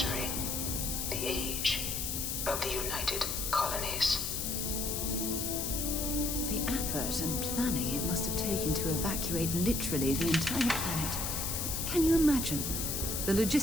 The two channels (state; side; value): noise; left; hiss, 2 dB below the sound